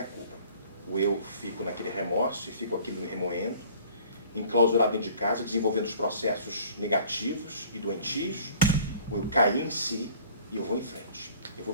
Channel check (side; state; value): both; inverted; correlation -0.51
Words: culpa. Ou eu fico naquele remorso e fico aquilo me remoendo, enclausurado dentro de casa, desenvolvendo os processos negativos e doentios, ou eu caí em si e eu vou em frente. Eu vou